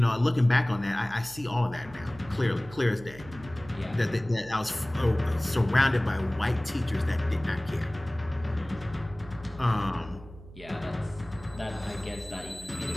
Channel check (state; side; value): noise; right; hum, 18 dB below the sound